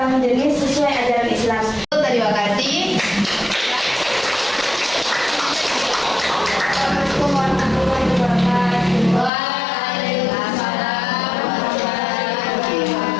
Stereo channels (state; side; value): drops out; right; at 9.3 s